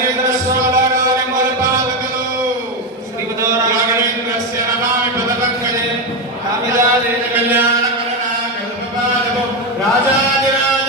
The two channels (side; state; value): both; normal; correlation 0.10